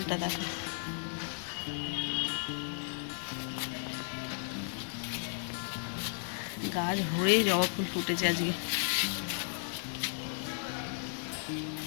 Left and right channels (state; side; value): silent; right; digital silence